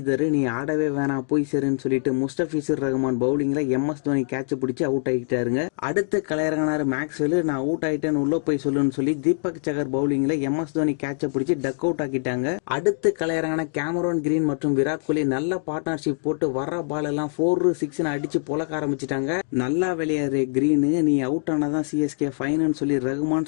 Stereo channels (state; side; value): silent; right; digital silence